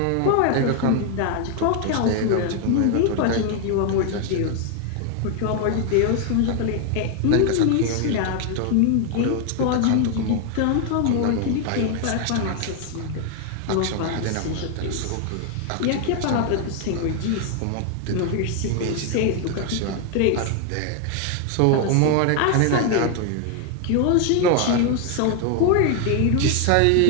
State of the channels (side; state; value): both; different; correlation 0.00